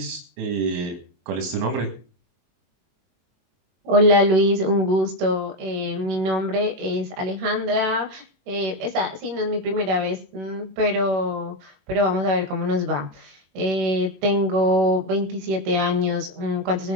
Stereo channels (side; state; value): left; late; 23 ms